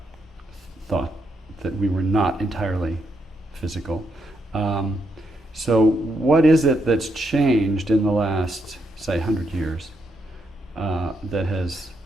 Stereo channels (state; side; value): normal; both; correlation 0.79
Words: that we were not entirely physical. So what is it that's changed in the last, say, 100 years that has